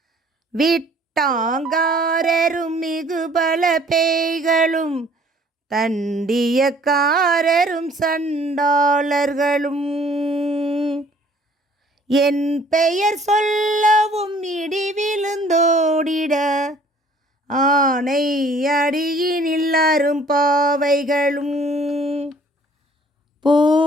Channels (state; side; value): normal; both; correlation 0.56